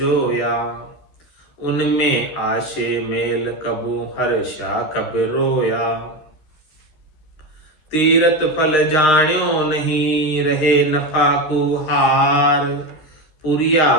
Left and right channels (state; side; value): late; right; 13 ms